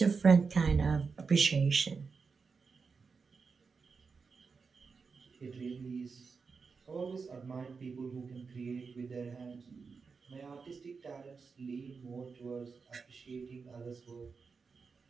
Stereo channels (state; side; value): quieter; left; 5.0 dB